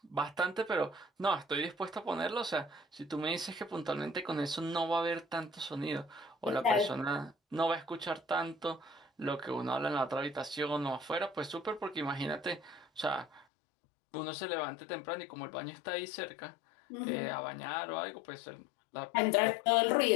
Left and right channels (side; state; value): right; drops out; at 13.5 s